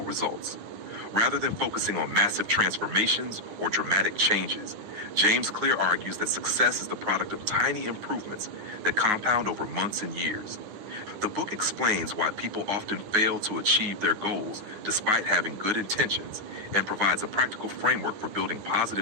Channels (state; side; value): late; left; 10 ms